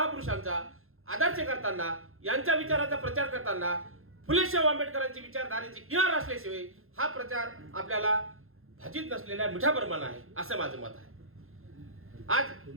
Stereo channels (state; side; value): late; left; 0.61 ms